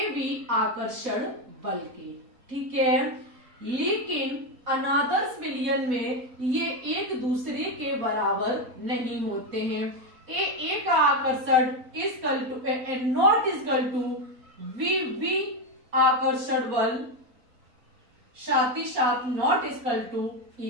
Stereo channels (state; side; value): late; left; 4.2 ms